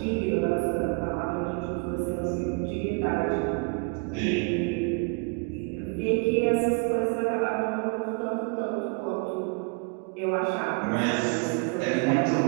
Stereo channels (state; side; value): quieter; left; 36.4 dB